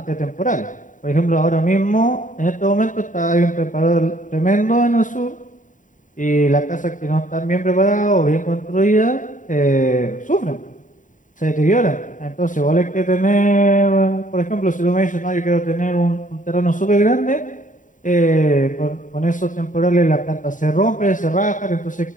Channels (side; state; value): right; late; 0.38 ms